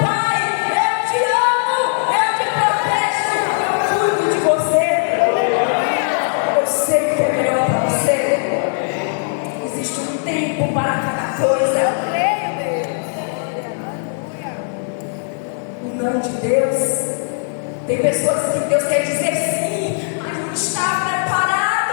pai, eu te amo, eu te protejo, eu cuido de você. Eu sei o que é melhor para você. Existe um tempo para cada coisa. O não de Deus. Tem pessoas que Deus quer dizer sim, mas não está preparado.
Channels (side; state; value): right; silent; digital silence